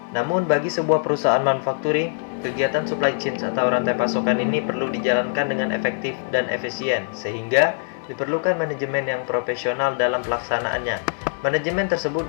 Namun bagi sebuah perusahaan manufacturing, kegiatan supply chain atau rantai pasokan ini perlu dijalankan dengan efektif dan efisien, sehingga diperlukan manajemen yang profesional dalam pelaksanaannya. Manajemen tersebut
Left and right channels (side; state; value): right; silent; 64 dB below the other